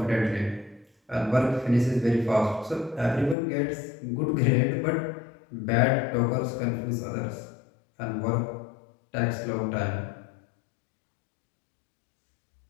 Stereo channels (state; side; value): drops out; right; at 3.4 s